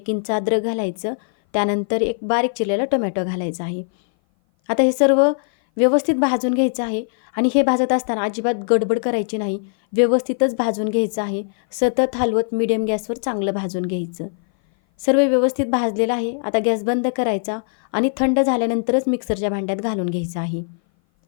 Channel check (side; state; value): right; silent; 58 dB below the other